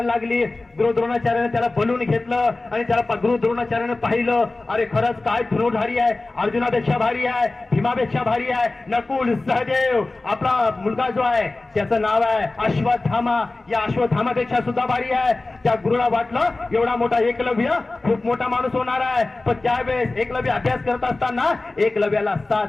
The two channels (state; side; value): quieter; right; 3.1 dB